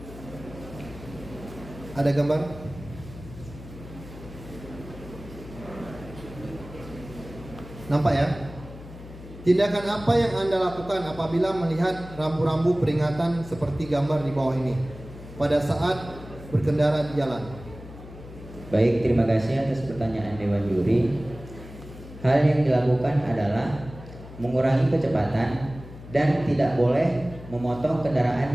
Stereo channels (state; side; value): noise; left; hum, 15 dB below the sound